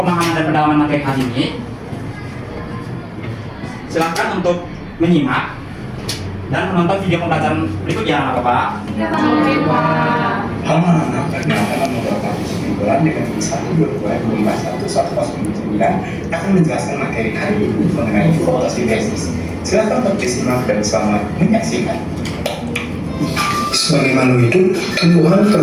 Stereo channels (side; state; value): both; identical; correlation 1.00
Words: dan pendalaman materi hari ini, silakan untuk menyimak dan menonton video pembelajaran berikut ya, Bapak. Oke, Pak. Anak Perkenalkan nomor 49 dengan 1/2021 akan menjelaskan materi hari ini mengenai fotosintesis. Silakan bersimak dan selamat menyaksikan. Sebagai makhluk hidup, tumbuhan